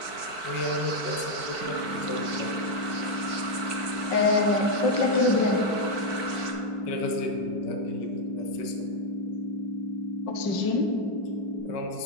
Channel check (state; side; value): late; right; 4.5 ms